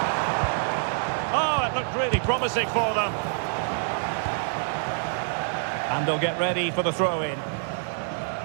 Oh, it looked really promising for them. And they'll get ready for the throw-in.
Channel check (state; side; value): silent; left; digital silence